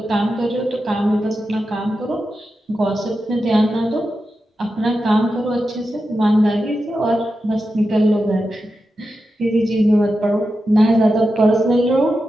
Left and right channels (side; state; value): both; normal; correlation 0.90